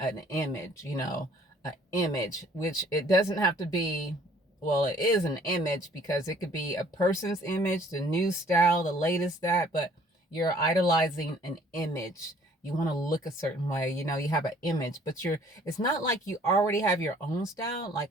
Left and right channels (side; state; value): both; normal; correlation 0.57